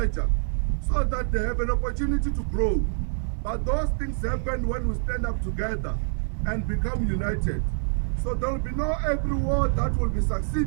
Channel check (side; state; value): left; silent; digital silence